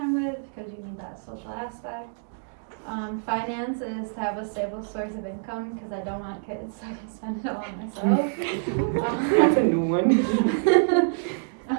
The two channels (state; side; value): silent; left; digital silence